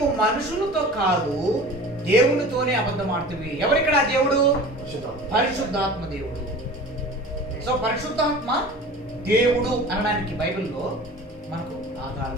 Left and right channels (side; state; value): both; normal; correlation 0.39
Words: మనుషులతో కాదు దేవునితోనే అబద్ధం ఆడుతుంది. ఎవరిక్కడ దేవుడు? పరిశుద్ధాత్మ దేవుడు. సో పరిశుద్ధాత్మ దేవుడు అనడానికి బైబిల్లో మనకు